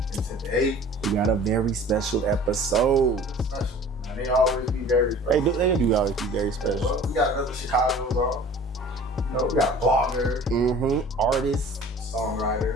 today, we got a very special episode. Special. Man, they always be very special. They do always be very special. Well, we got another Chicago's on. You know, we got a blogger. Artist.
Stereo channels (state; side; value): normal; both; correlation 0.45